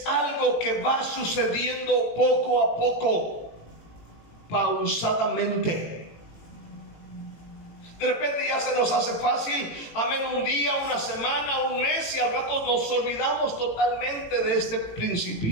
algo que va sucediendo poco a poco, pausadamente. De repente ya se nos hace fácil, amén, un día, una semana, un mes, y al rato nos olvidamos totalmente de este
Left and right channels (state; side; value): late; right; 18 ms